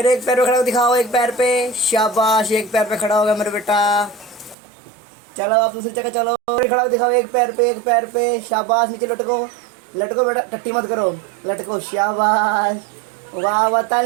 एक पैर पे खड़ा हो दिखाओ, एक पैर पे, शाबाश। एक पैर पे खड़ा हो गया मेरे बेटा। चलो आप दूसरी जगह चलो, फिर खड़ा हो दिखाओ, एक पैर पे, एक पैर पे, शाबाश। नीचे लटको, लटको बेटा, टट्टी मत करो, लटको, शाबाश। वाह वाह,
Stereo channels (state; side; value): drops out; left; at 4.5 s